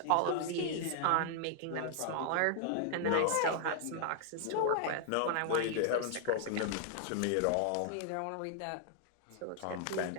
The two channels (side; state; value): both; different; correlation 0.00